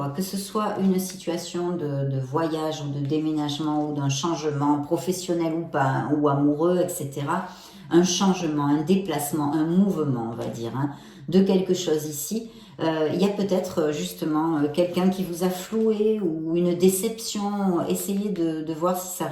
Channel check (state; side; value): identical; both; correlation 1.00